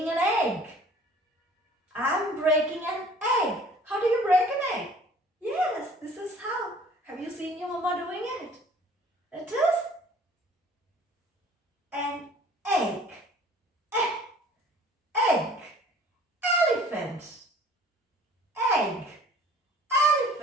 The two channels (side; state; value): both; normal; correlation 0.51